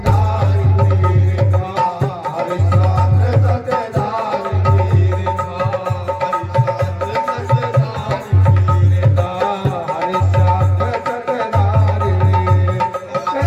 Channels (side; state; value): both; identical; correlation 1.00